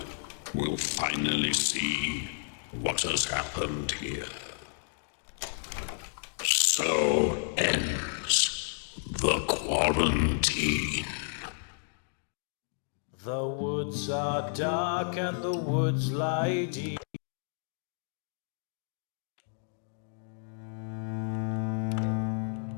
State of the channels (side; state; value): right; silent; digital silence